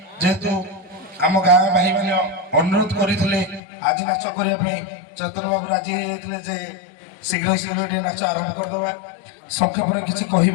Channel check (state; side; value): drops out; right; at 3.6 s